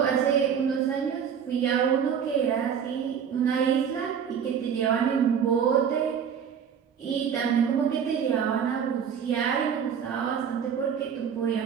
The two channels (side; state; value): left; quieter; 7.7 dB